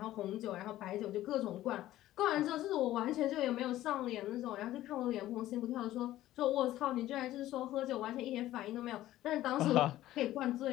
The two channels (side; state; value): right; quieter; 14.5 dB